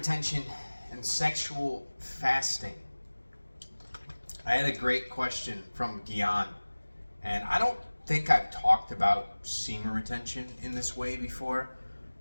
and sexual fasting. I had a great question from Gian, and I don't think I've talked about semen retention in this way before,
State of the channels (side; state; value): both; inverted; correlation -1.00